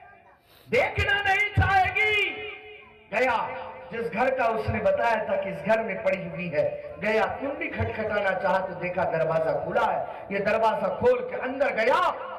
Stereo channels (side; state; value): both; identical; correlation 1.00